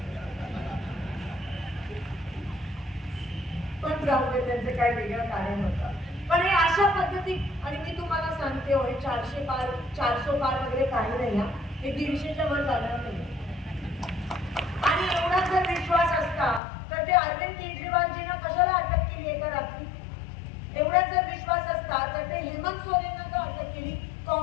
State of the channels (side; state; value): right; drops out; at 16.6 s